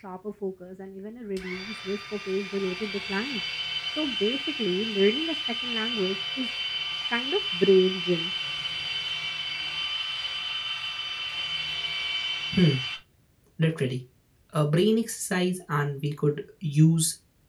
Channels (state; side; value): identical; both; correlation 1.00